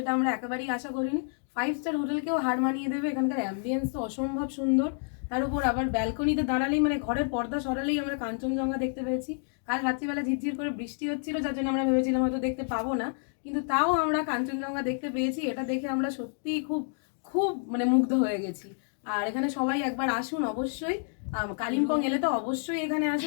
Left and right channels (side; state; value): right; silent; 59 dB below the other